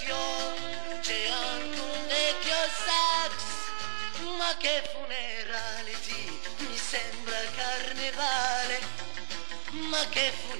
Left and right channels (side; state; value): left; silent; digital silence